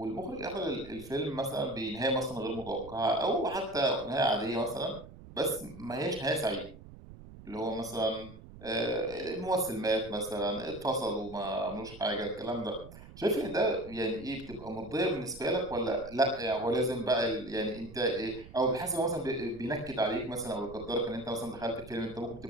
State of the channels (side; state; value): right; noise; rumble, 17 dB below the sound